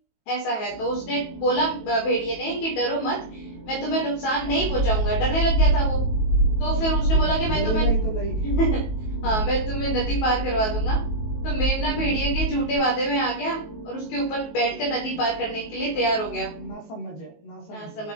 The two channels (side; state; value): right; late; 19 ms